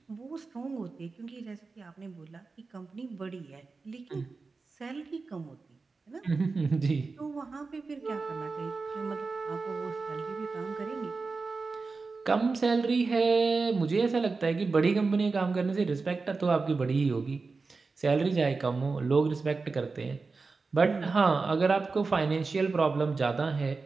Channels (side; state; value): left; quieter; 4.2 dB